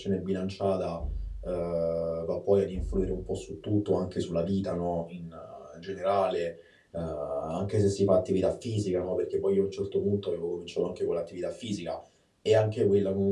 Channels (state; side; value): identical; both; correlation 1.00